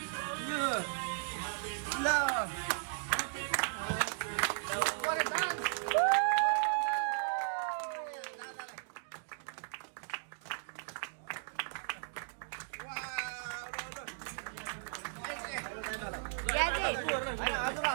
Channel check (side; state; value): left; silent; digital silence